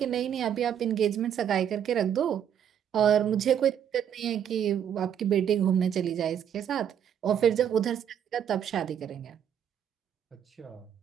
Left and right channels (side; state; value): left; quieter; 9.1 dB